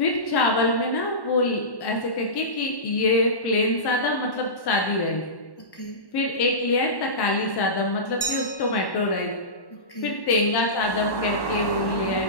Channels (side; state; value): right; late; 1.1 ms